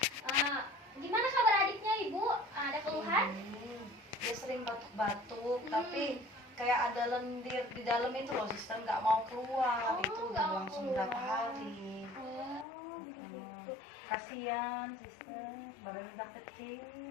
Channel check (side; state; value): right; drops out; at 12.7 s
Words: Gimana kabar adiknya Ibu? Ada keluhan? Dia sering batuk-batuk, tapi kayak ada lendir di dalam itu loh, Sister, nggak mau keluar. Itu nggak udah mau langsung keluar. berapa hari. Jadi gitu. Kasihan, Sister, badannya udah kecil.